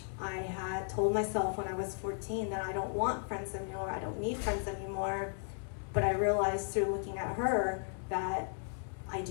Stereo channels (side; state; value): right; silent; 54 dB below the other